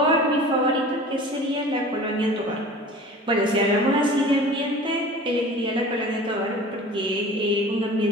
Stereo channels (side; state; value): both; normal; correlation 0.41